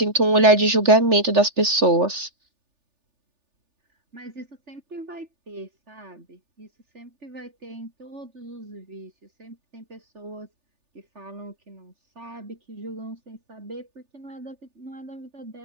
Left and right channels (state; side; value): late; left; 3.4 ms